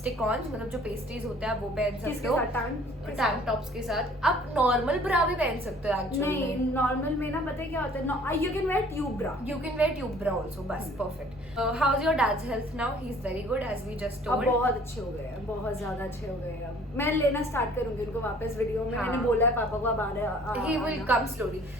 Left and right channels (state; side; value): normal; both; correlation 0.53